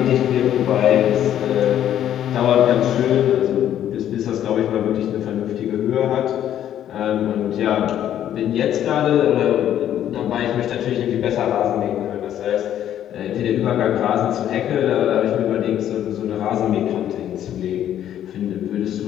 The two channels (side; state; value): right; quieter; 10.9 dB